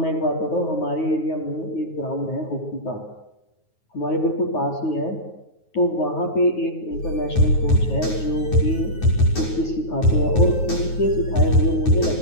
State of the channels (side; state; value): right; late; 9.4 ms